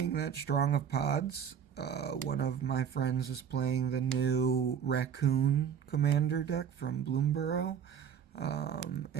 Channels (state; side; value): quieter; left; 8.0 dB